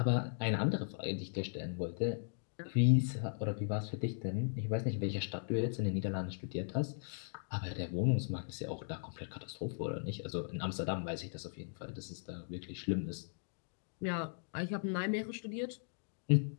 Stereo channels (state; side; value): silent; right; digital silence